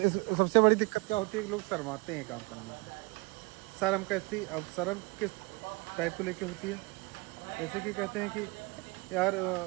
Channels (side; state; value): left; quieter; 27.1 dB